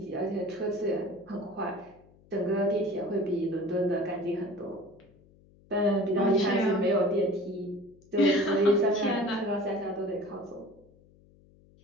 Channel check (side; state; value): left; noise; hum, 28 dB below the sound